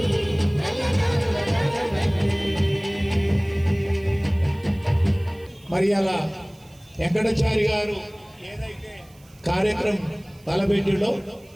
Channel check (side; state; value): right; noise; hiss, 29 dB below the sound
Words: నల్ల నాగుల నగమల్లి. మరి అలా వెంకటాచారి గారు ఏదైతే కార్యక్రమం తలపెట్టిలో